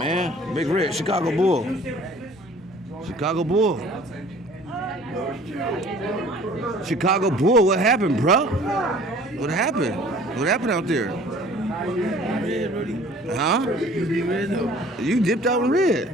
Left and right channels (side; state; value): both; normal; correlation 0.51